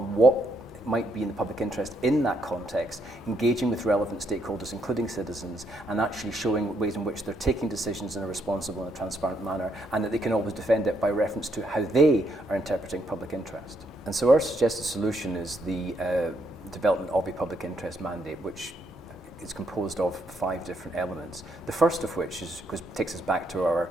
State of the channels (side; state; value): both; normal; correlation 0.75